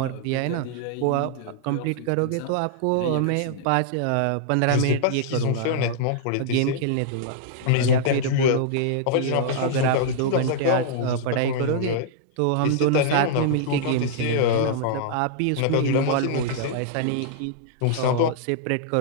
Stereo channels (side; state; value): both; different; correlation -0.01